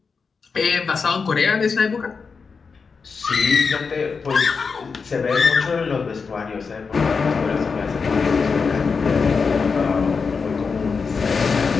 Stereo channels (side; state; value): right; quieter; 5.2 dB